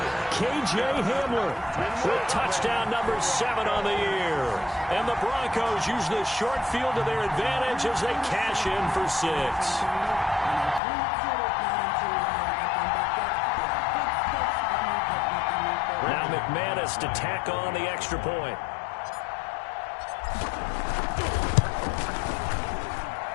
K.J. Hamler with touchdown number 7 on the year. And the Broncos use the short field to their advantage as they cash in for 6. Now McManus to tack on the extra point.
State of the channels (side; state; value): right; drops out; at 10.8 s